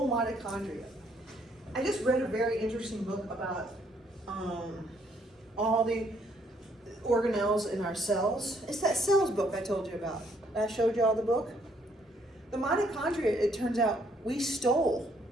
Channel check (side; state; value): both; normal; correlation 0.68